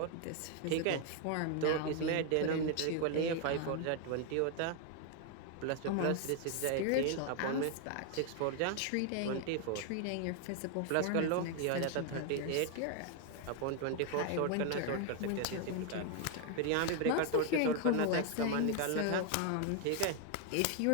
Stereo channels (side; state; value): both; different; correlation 0.01